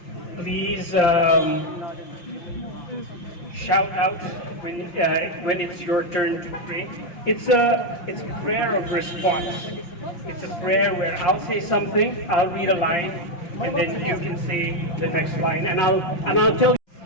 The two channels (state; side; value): late; right; 5.8 ms